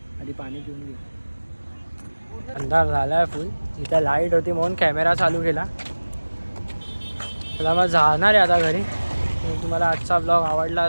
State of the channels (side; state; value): both; inverted; correlation -1.00